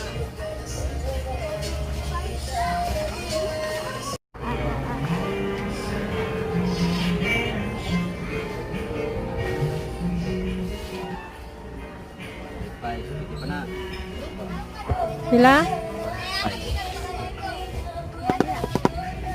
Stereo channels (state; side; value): identical; both; correlation 1.00